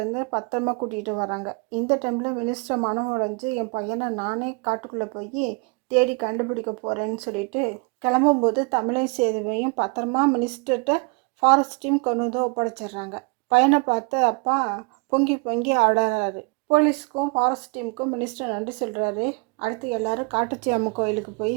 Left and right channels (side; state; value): left; quieter; 31.7 dB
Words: பத்திரமா கூட்டிகிட்டு வராங்க. இந்த டைமில் மினிஸ்டர் மனம் உடைஞ்சு என் பையனை நானே காட்டுக்குள்ளே போய் தேடி கண்டுபிடிக்க போகிறேன்னு சொல்லிட்டு கிளம்பும்போது தமிழையும் சேதுவையும் பத்திரமா மினிஸ்டர்கிட்ட ஃபாரஸ்ட் டீம் கொண்டு வந்து ஒப்படைச்சிடுறாங்க. பையனை பார்த்து அப்பா பொங்கி பொங்கி ஆடுறாரு. போலீஸுக்கும் ஃபாரஸ்ட் டீமுக்கும் மினிஸ்டர் நன்றி சொல்கிறாரு. அடுத்து எல்லாரும் காட்டுச்சி அம்மன் கோயிலுக்கு போய்